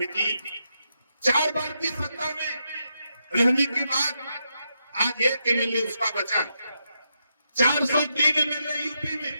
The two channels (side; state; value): both; inverted; correlation -0.83